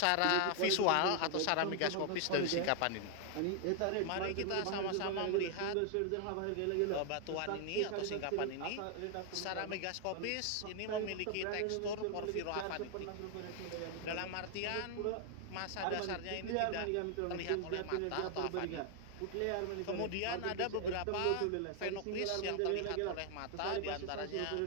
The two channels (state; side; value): different; both; correlation 0.00